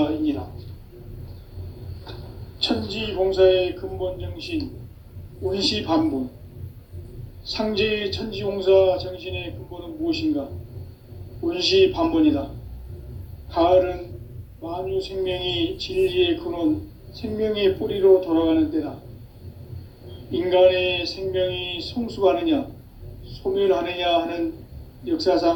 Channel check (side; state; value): both; identical; correlation 1.00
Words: 천지공사의 근본 정신 운시반본. 상제의 천지공사 정신의 근본은 무엇인가? 운시반본이다. 가을은 만유 생명이 진리의 근원, 생명의 뿌리로 돌아가는 때다. 인간의 생명이 성숙하느냐, 소멸하느냐 하는